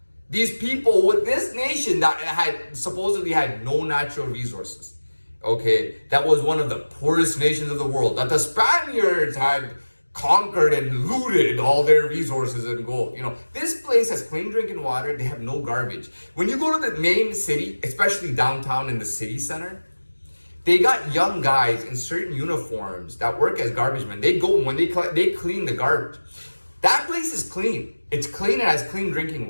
These people with this nation that had supposedly had no natural resources, okay, that was one of the poorest nations of the world, that the Spaniards had conquered and looted all their resources and gold. This place has clean drinking water. They have no garbage. When you go to the main city, especially downtown in the city center, they got young guys in certain uniforms that work as garbage men. They go when they clean the garbage. That place is clean. It's clean and has clean drinking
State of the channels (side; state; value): both; inverted; correlation -1.00